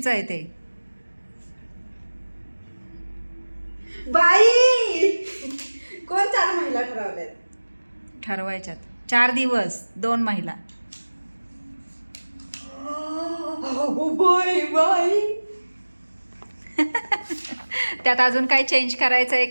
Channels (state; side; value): inverted; both; correlation -1.00